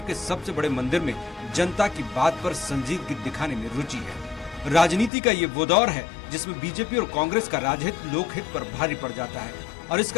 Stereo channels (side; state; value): right; drops out; at 5.1 s